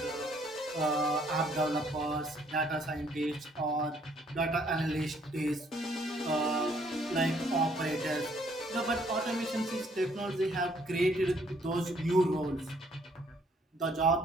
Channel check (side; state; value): both; normal; correlation 0.65